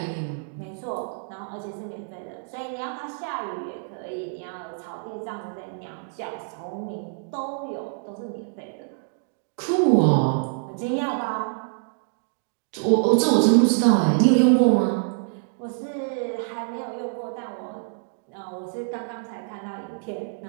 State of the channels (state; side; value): silent; left; digital silence